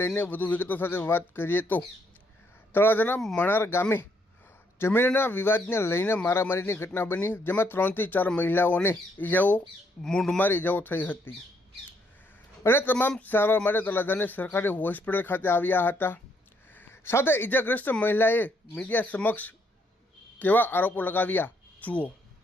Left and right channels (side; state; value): both; normal; correlation 0.72